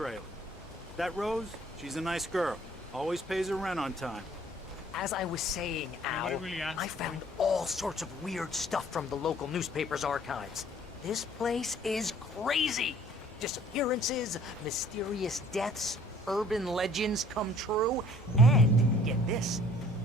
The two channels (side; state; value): both; normal; correlation 0.56